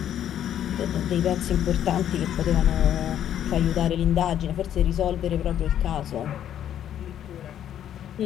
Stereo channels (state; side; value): quieter; right; 10.4 dB